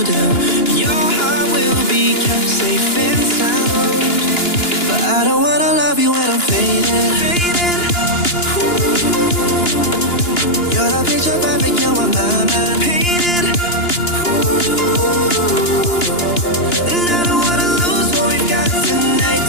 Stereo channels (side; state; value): right; late; 2.9 ms